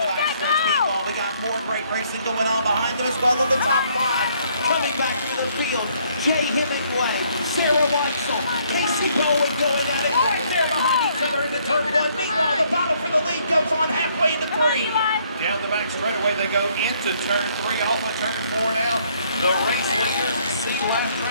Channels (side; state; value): both; inverted; correlation -0.66